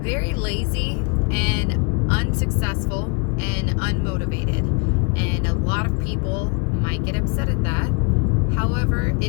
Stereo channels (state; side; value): quieter; right; 33.1 dB